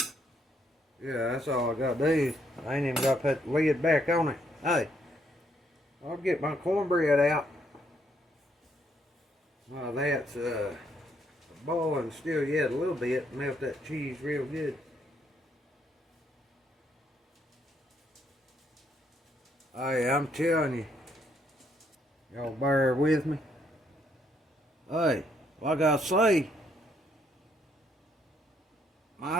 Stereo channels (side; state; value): both; normal; correlation 0.72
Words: Yeah, that's all I got to do. I ain't even got to put the lid back on it. Hey. I'll get my cornbread out. Well, that's boiling still yet a little bit. Melt that cheese real good. Hey, I'm telling you. Y'all bear with me. Hey, like I say,